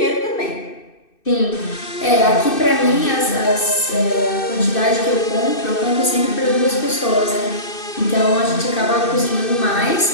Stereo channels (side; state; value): right; late; 2.6 ms